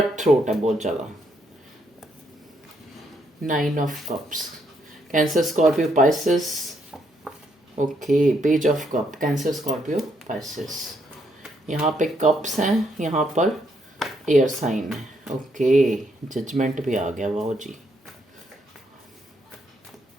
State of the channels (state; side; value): normal; both; correlation 0.74